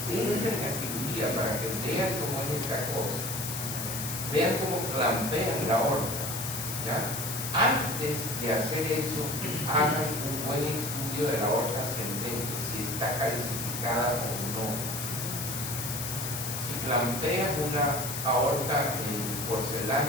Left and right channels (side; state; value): left; noise; hiss, 4 dB below the sound